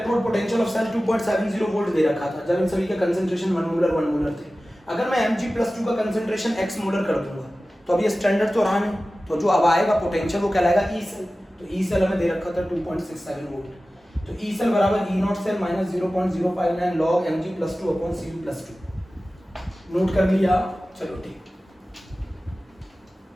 potential of cell 2.70 volt दे रखा था, जब इन सभी के कंसेंट्रेशन 1 मोलर थे, अगर मैं Mg +2 का कंसेंट्रेशन x मोलर कर दूंगा तो अब ये स्टैंडर्ड तो रहा नहीं, तो जो अब आएगा पोटेंशियल वो कहलाएगा ई सेल। तो ई सेल हमें दे रखा था 2.67 वोल्ट। तो ई सेल बराबर E0 cell minus 0.059 log Mg +2 upon Cu +2। Note कर लिया? चलो ठीक,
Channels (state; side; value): normal; both; correlation 0.96